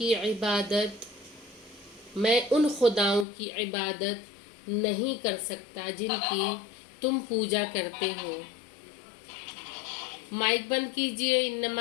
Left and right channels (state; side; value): drops out; right; at 3.2 s